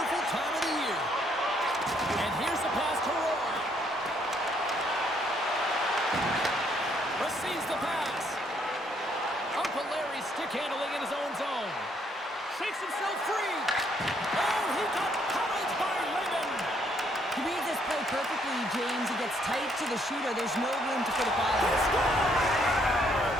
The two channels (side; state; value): both; normal; correlation 0.69